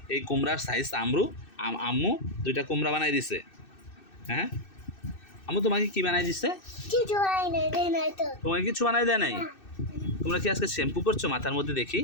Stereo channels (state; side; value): late; right; 2.6 ms